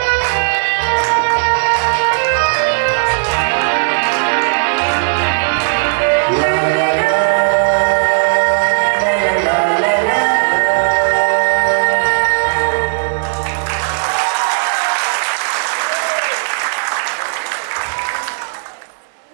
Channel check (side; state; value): left; silent; digital silence